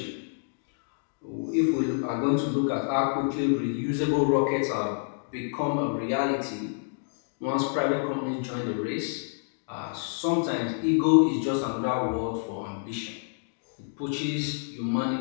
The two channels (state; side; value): silent; right; digital silence